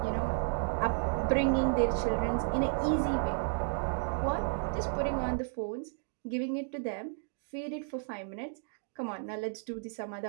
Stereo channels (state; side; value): silent; left; 56 dB below the other